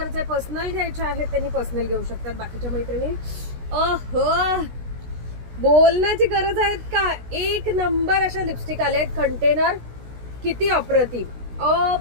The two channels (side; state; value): left; late; 16 ms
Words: पर्सनल घ्यायचे आहेत, त्यांनी पर्सनल घेऊ शकतात. बाकीच्या मैत्रिणी बोलण्याची गरज आहेत का? एक नंबर अशा लिपस्टिक आले आहेत. कंटेनर किती